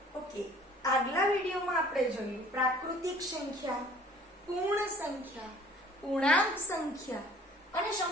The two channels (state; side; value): normal; both; correlation 0.52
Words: ઓકે, આગલા વિડિયોમાં આપણે જોયું પ્રાકૃતિક સંખ્યા, પૂર્ણ સંખ્યા, પૂર્ણાંક સંખ્યા અને